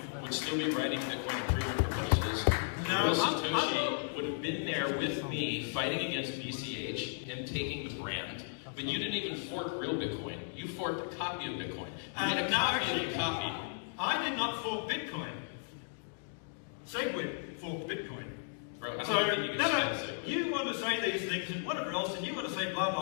would still be writing Bitcoin improvement proposals. Real Satoshi would have been there with me fighting against BCH and taking the brand. But you didn't even fork real Bitcoin. You forked a copy of Bitcoin. You made a copy of a copy. I did not fork Bitcoin. Segwit forked Bitcoin. Bro, So, you want to say these things and whatever else, and you want to say blah,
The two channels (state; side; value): silent; right; digital silence